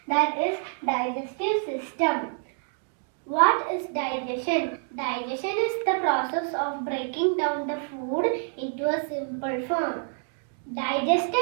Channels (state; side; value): silent; left; 56 dB below the other